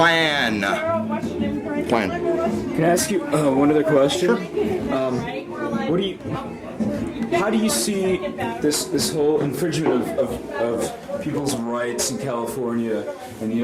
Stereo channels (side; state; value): both; identical; correlation 1.00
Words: Can I ask you one other question? Sure. How do you see this whole infringement of people's rights in California and the